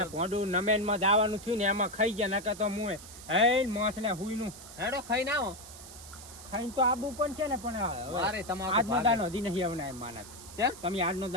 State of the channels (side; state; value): right; noise; hiss, 16 dB below the sound